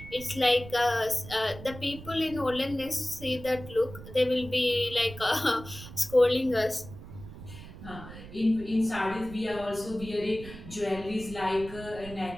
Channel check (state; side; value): noise; right; rumble, 14 dB below the sound